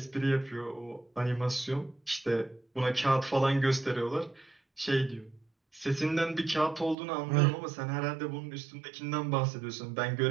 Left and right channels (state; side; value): drops out; left; at 7.0 s